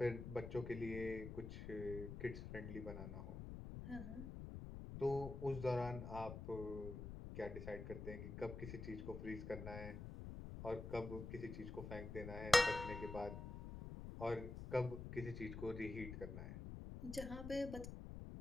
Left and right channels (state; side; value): noise; left; rumble, 7 dB below the sound